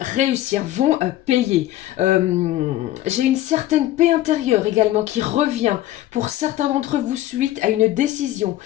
vont payer. J'ai une certaine paix intérieure également qui revient pour certains d'entre vous suite à une décision,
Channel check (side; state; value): right; quieter; 14.5 dB